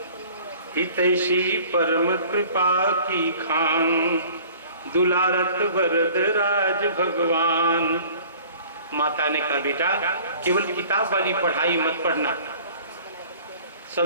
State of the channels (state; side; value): inverted; both; correlation -0.48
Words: हितैषी परम कृपा की खान, दुलारत वरद राज भगवान। माता ने कहा बेटा केवल किताब वाली पढ़ाई मत पढ़ना,